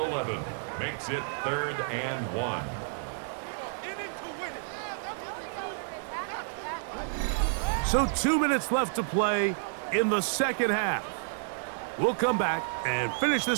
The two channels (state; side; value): silent; left; digital silence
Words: makes it 3rd and 1. So 2 minutes left to play in the second half. We'll come back and finish